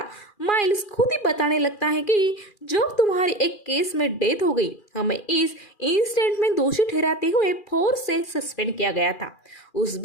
माइल्स खुद ही बताने लगता है कि जब तुम्हारी एक केस में डेथ हो गई, हमें इस इंसिडेंट में दोषी ठहराते हुए फोर्स से सस्पेंड किया गया था। उस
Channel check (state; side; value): late; right; 2.4 ms